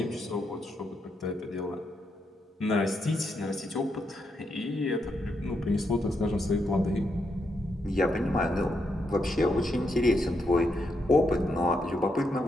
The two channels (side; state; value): both; normal; correlation 0.80